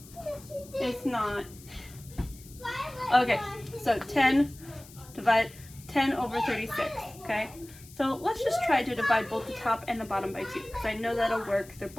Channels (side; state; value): left; noise; hiss, 20 dB below the sound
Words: It's not. Okay, so 10 over 36, okay? So let's just try to divide both the top and the bottom by 2, because I know that'll work. They're